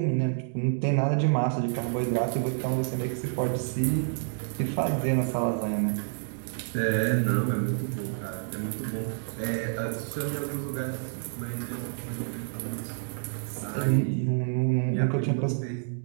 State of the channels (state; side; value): silent; left; digital silence